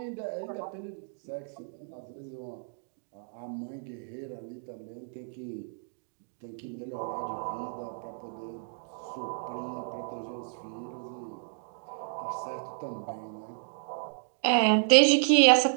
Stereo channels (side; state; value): left; silent; digital silence